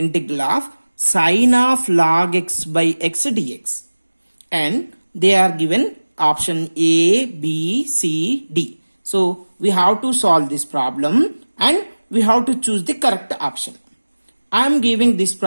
of sine of log x by x dx, and they are given option A, B, C, D. So we have to solve this problem and we have to choose the correct option. I am giving this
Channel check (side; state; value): both; inverted; correlation -1.00